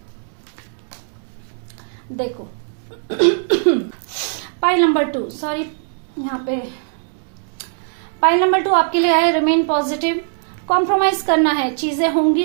देखो पाइल नंबर 2, सॉरी यहाँ पे पाइल नंबर 2 आपके लिए आया रिमेन पॉजिटिव। कॉम्प्रोमाइज करना है, चीजें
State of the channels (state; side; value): silent; left; digital silence